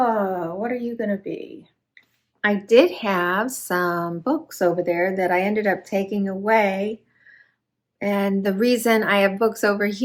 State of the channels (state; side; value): identical; both; correlation 1.00